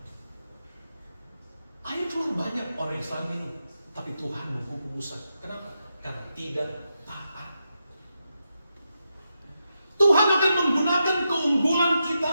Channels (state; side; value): inverted; both; correlation -0.86